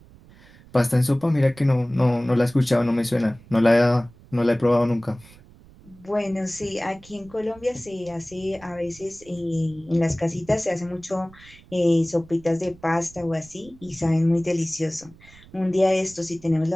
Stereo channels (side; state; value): right; noise; rumble, 24 dB below the sound